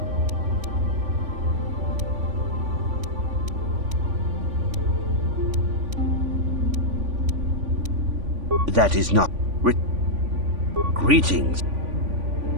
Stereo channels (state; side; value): late; left; 3.5 ms